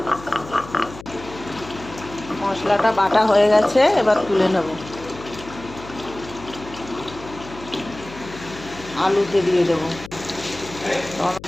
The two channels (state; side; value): noise; left; hum, 16 dB below the sound